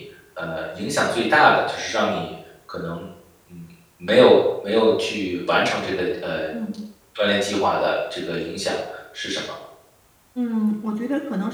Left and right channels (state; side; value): identical; both; correlation 1.00